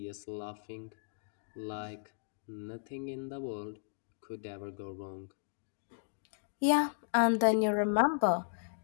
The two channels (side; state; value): right; silent; digital silence